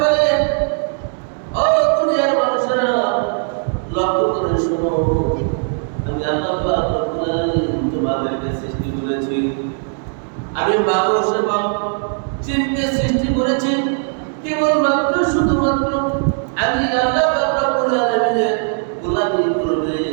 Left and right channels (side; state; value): left; silent; 55 dB below the other